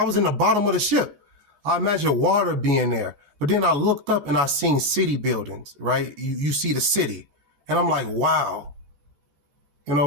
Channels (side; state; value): left; late; 13 ms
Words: was in the bottom of the ship. I imagined water being there. But then I looked up and I seen city buildings, right? You see the city. And I'm like, wow. You